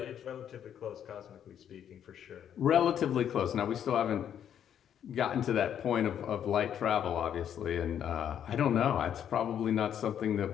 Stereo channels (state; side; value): quieter; right; 9.4 dB